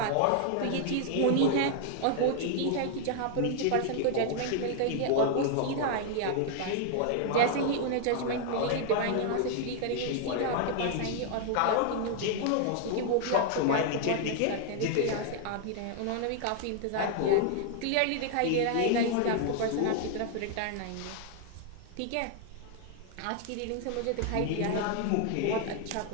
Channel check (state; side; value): different; both; correlation 0.00